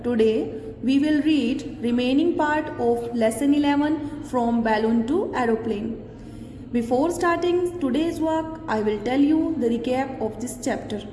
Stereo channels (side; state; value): both; identical; correlation 1.00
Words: Today we will read remaining part of lesson 11 from balloon to aeroplane. Before starting today's work, I will tell you the recap of this chapter.